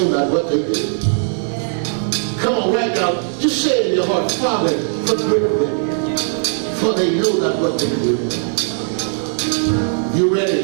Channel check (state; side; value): silent; left; 67 dB below the other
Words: not what they do. Come on, right now, just say it in your heart, Father, forgive them, for they know not what they do. You